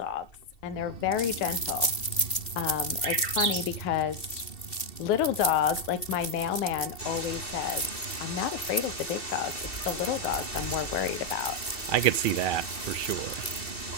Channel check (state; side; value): late; right; 2.7 ms